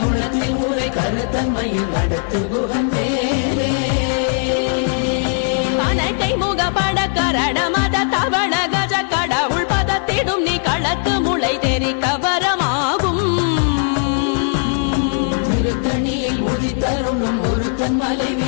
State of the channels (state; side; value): silent; right; 67 dB below the other